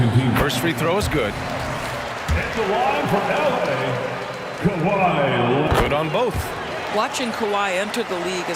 team. First free throw is good. At the line for LA, Kawhi. Good on both. Watching Kawhi enter the league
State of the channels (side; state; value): both; identical; correlation 1.00